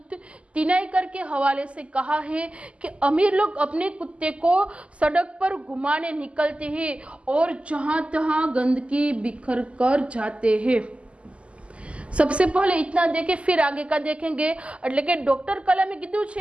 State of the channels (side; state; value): left; late; 0.057 ms